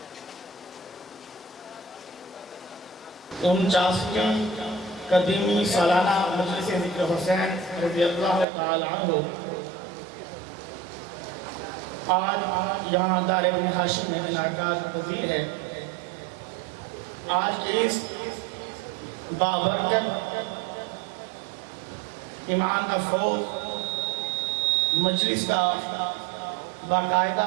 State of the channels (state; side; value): drops out; left; at 8.5 s